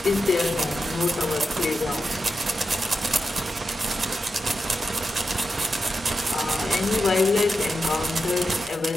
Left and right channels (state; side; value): normal; both; correlation 0.88